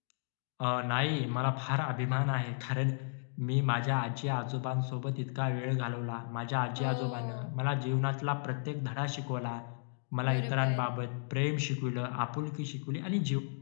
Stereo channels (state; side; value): silent; right; digital silence